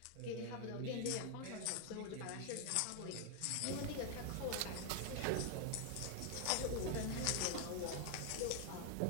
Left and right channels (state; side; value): different; both; correlation 0.00